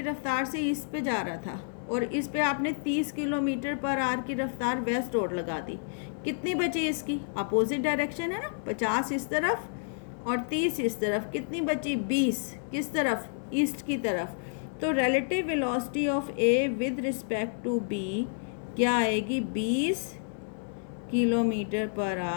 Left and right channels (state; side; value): silent; right; 58 dB below the other